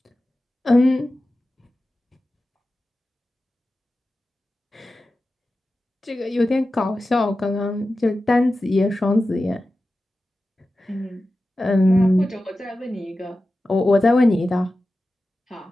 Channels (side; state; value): both; normal; correlation 0.94